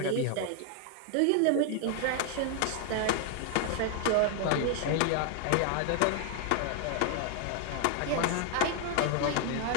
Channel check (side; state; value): both; different; correlation 0.00